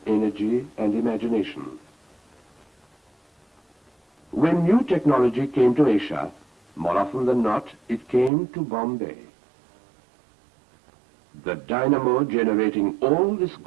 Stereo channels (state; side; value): drops out; left; at 8.3 s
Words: energy, and imagination. When new technology came to Asia, more often than not, it came to Bombay. The dynamo generating all this